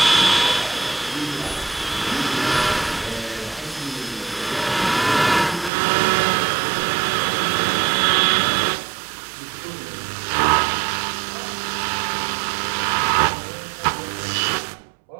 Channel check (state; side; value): drops out; left; at 5.7 s